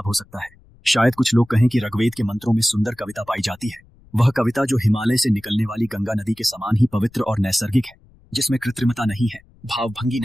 हो सकता है? शायद कुछ लोग कहें कि ऋग्वेद के मंत्रों में सुंदर कविता पाई जाती है। वह कविता जो हिमालय से निकलने वाली गंगा नदी के समान ही पवित्र और नैसर्गिक है, जिसमें कृत्रिमता नहीं है, भावभंगी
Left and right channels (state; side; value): noise; left; rumble, 28 dB below the sound